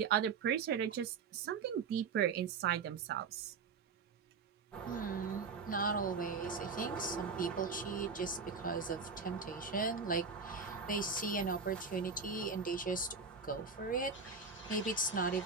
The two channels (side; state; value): left; quieter; 5.0 dB